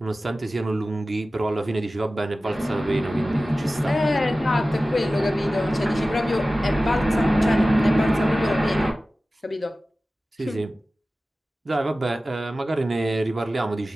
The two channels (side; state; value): both; normal; correlation 0.96